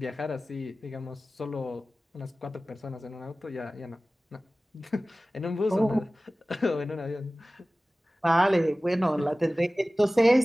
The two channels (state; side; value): normal; both; correlation 0.97